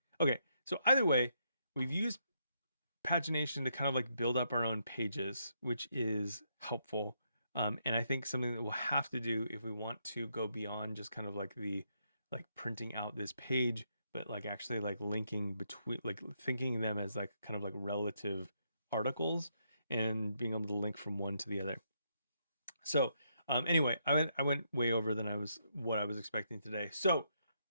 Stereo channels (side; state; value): both; inverted; correlation -0.77